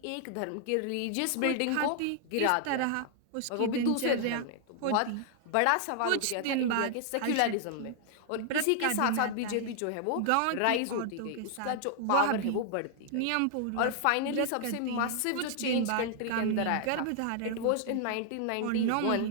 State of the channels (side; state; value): both; different; correlation 0.00